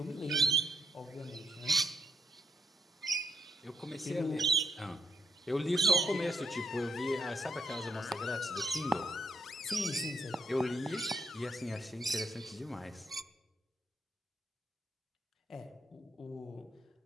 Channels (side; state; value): both; normal; correlation 0.73